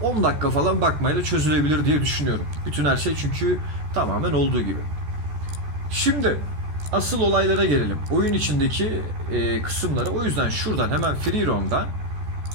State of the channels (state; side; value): late; left; 14 ms